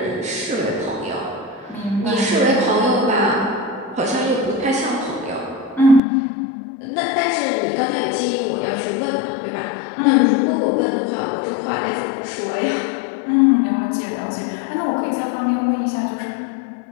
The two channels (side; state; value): right; drops out; at 6.0 s